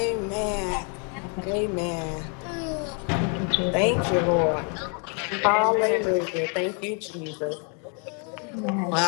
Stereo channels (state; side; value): quieter; right; 38.9 dB